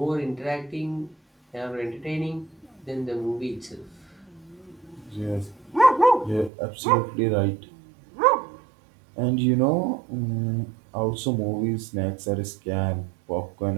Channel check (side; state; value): left; drops out; at 6.5 s